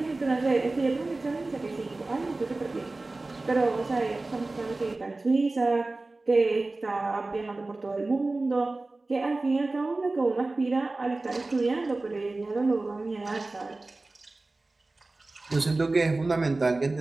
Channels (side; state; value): left; quieter; 3.2 dB